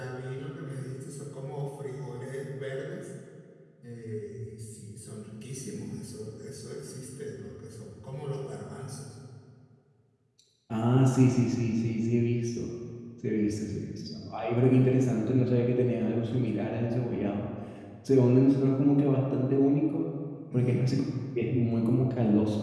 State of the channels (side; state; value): both; identical; correlation 1.00